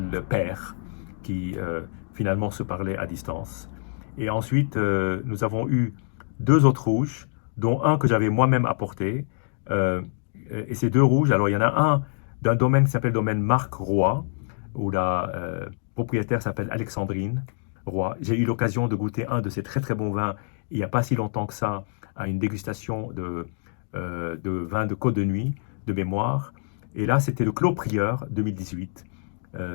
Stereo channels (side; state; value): right; silent; digital silence